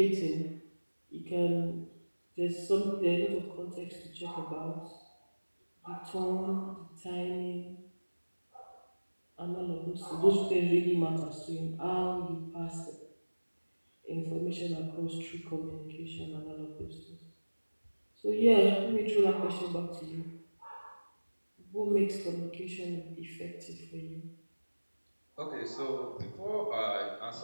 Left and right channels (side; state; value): both; inverted; correlation -1.00